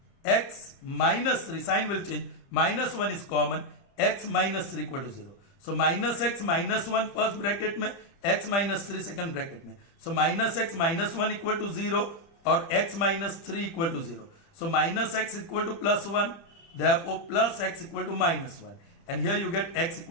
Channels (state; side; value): late; right; 30 ms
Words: X minus 3, sign will change. Minus 1 is common. X minus 3 equal to 0. So minus x minus 1 first bracket में, x minus 3 second bracket में. So minus x minus 1 equal to 0 or x minus 3 equal to 0. So minus x equal to plus 1. Therefore plus x equal to minus 1. And here you get x